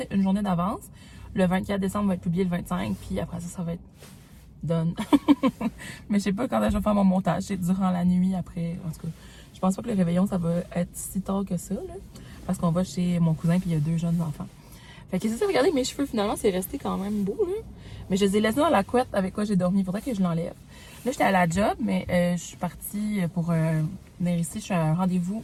une journée d'avance, le 24 décembre va être publié le 25, puis après ça va être done. Mais je sais pas quand je vais faire mon montage, c'est durant la nuit après, en tout cas. Je pense pas que le réveillon, ça va être si tard que ça, là, parce qu'on va chez mon cousin, puis il y a 2 jeunes enfants. Fait que c'est ça, regardez, mes cheveux, finalement, c'est resté quand même beau, là. Mais je les ai laissés dans la couette avec quoi j'ai dormi. Il faudrait que je l'enlève. Là, j'étais à la job, mais je suis partie pour venir ici. Je suis à un rendez-vous.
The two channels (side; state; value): both; identical; correlation 1.00